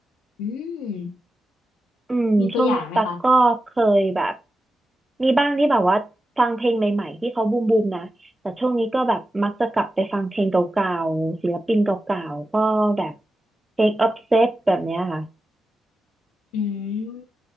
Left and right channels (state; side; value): normal; both; correlation 0.91